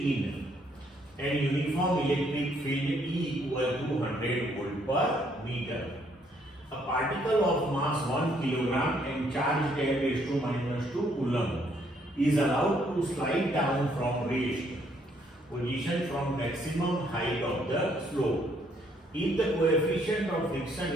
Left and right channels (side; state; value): both; normal; correlation 0.68